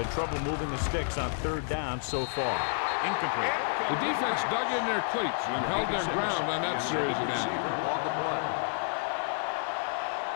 trouble moving the sticks on third down so far. Incomplete. The defense dug in their cleats and held their ground on that series of downs.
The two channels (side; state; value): right; silent; digital silence